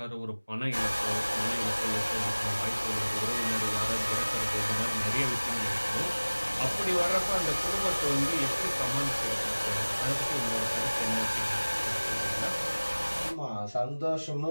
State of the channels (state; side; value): inverted; both; correlation -1.00